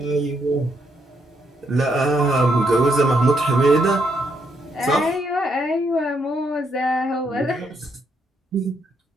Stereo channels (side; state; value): both; normal; correlation 0.76